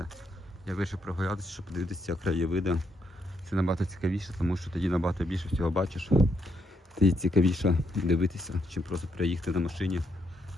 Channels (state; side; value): normal; both; correlation 0.77